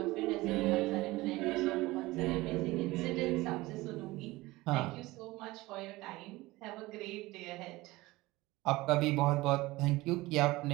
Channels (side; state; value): left; quieter; 19.9 dB